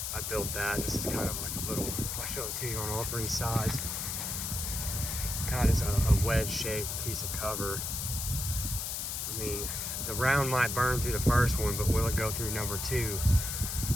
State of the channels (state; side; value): noise; left; hiss, 3 dB below the sound